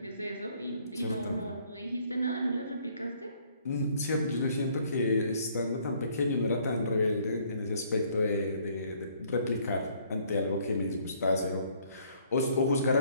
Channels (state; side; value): inverted; both; correlation -0.63